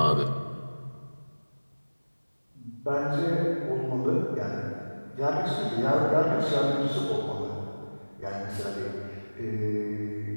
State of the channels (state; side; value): inverted; both; correlation -1.00